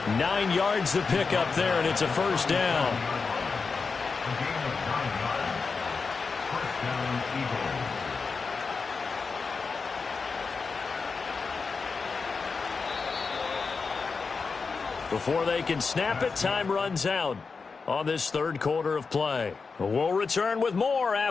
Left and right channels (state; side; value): quieter; right; 4.8 dB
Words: 9 yards to pick up there, and it's a first down. Before they can snap it, time runs out. on this third quarter of play. We'll return with more